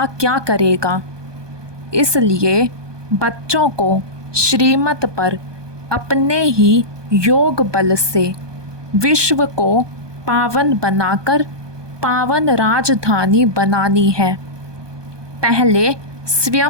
क्या करेगा? इसलिए बच्चों को श्रीमत पर अपने ही योग बल से विश्व को पावन बनाकर पावन राजधानी बनानी है। पहले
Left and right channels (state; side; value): late; left; 1.2 ms